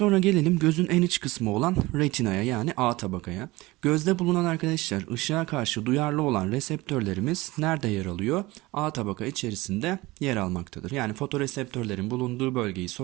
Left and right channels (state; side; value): quieter; left; 20.6 dB